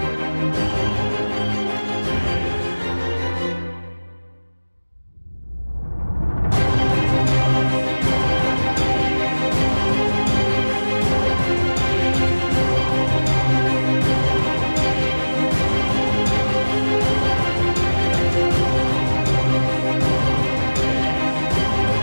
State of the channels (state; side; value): inverted; both; correlation -1.00